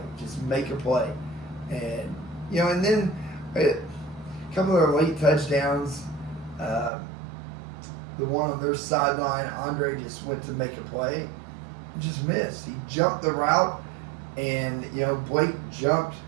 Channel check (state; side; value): drops out; left; at 6.9 s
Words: Just make a play, and and then A couple of their late touchdowns. The one on their sideline, Andre just went to make a play and just missed. He jumped the route, and Blake jumped